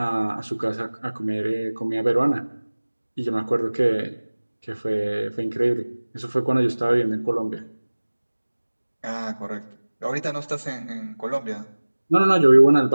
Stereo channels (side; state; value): both; inverted; correlation -1.00